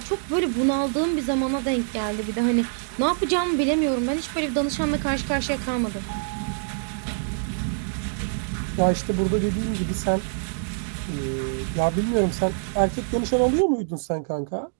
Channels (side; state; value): left; silent; digital silence